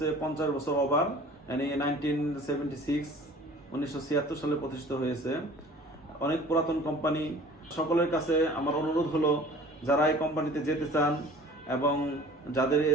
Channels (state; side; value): normal; both; correlation 0.47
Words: 50 বছর ওভার, মানে 1976 সালে প্রতিষ্ঠিত হয়েছে। অনেক পুরাতন কোম্পানি। সকলের কাছে আমার অনুরোধ হলো, যারা এই কোম্পানিতে যেতে চান এবং যাদের